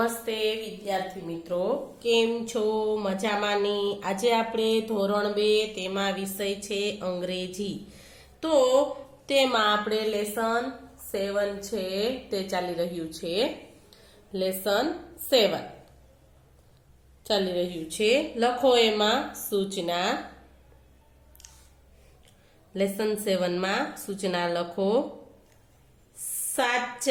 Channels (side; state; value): both; identical; correlation 1.00